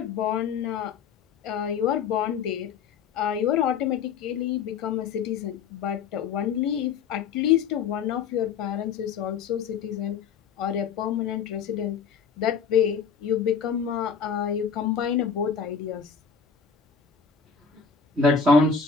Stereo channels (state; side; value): quieter; right; 6.4 dB